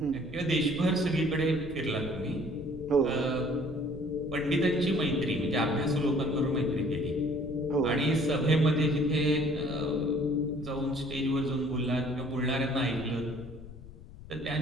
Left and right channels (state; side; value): noise; left; rumble, 16 dB below the sound